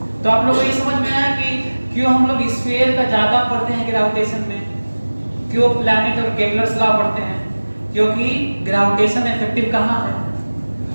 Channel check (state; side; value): inverted; both; correlation -1.00